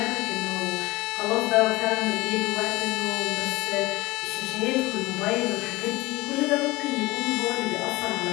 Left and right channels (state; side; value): quieter; right; 20.3 dB